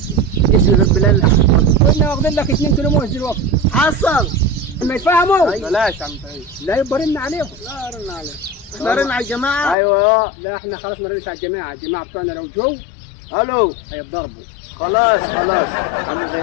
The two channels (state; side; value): drops out; right; at 9.8 s